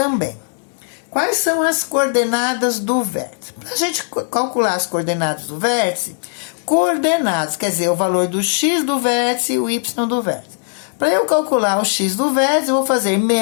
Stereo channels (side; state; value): right; silent; digital silence